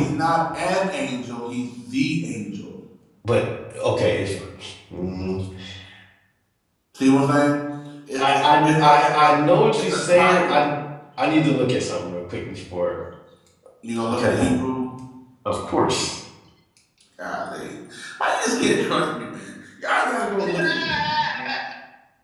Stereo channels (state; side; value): identical; both; correlation 1.00